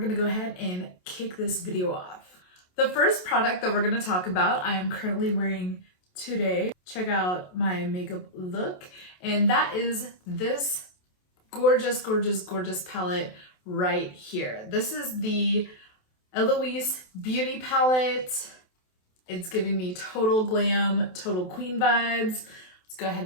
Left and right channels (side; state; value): right; late; 27 ms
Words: go ahead and kick this video off. The first product that we're gonna talk about, I am currently wearing today. Check out my makeup look, and that is this gorgeous, gorgeous, gorgeous palette right here. This is the Eloise Beauty Palette. It's giving me total glam, total queen vibes. Let's go